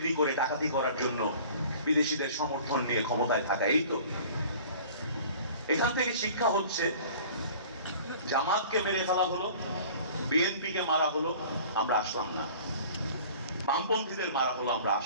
করে ডাকাতি করার জন্য বিদেশিদের সমর্থন নিয়ে ক্ষমতায় থাকা। এই তো এখান থেকে শিক্ষা হচ্ছে, জামাতকে মেরে ফেলা হলো, বিএনপিকে মারা হলো, আমরা আসলাম না। বামপন্থীদের মারা হলো, আমরা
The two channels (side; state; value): both; inverted; correlation -0.46